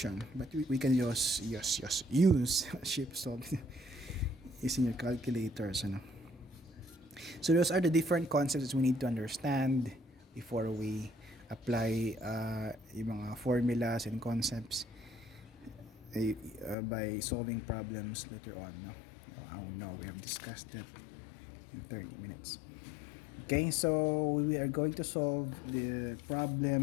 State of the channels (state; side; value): drops out; right; at 16.8 s